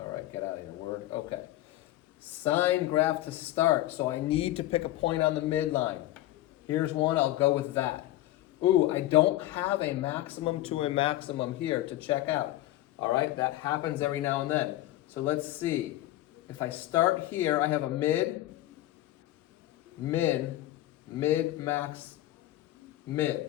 right, get out of here, word. Okay. Sine graph to start. So I need to pick a point on the midline. Here's one, I'll go with that. Ooh, I don't have a maximum to a maximum here to check out. All right, that happens every now and then. So let's see. If I start here, I have a mid, min, mid, max,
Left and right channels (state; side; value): quieter; right; 15.4 dB